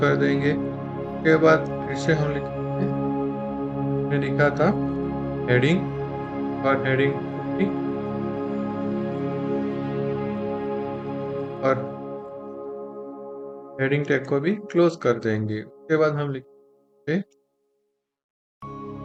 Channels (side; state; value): both; identical; correlation 1.00